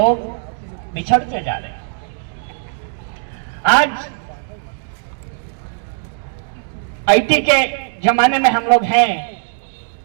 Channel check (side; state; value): left; silent; digital silence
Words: बिछड़ते जा रहे हैं। आज आईटी के जमाने में हम लोग हैं।